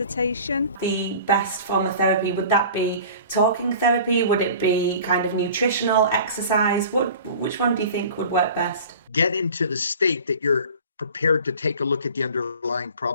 The best form of therapy, would that be talking therapy? Would it be kind of nutritional, exercise? Which one do you think would work best? Get into the state that you're prepared to take a look at the underlying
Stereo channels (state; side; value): inverted; both; correlation -0.42